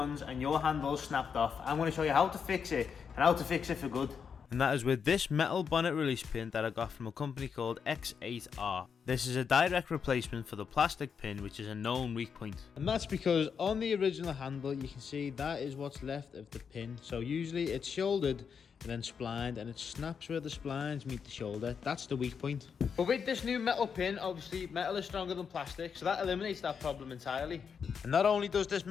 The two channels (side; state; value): right; quieter; 6.6 dB